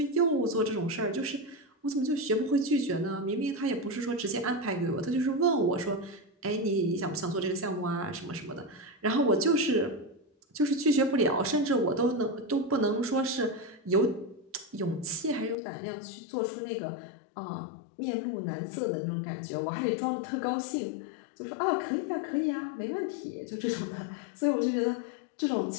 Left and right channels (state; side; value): drops out; right; at 15.6 s